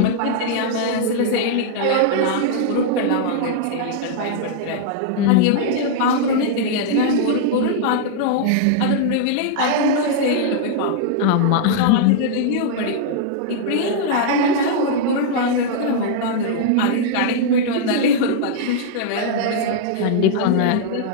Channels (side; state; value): both; different; correlation -0.01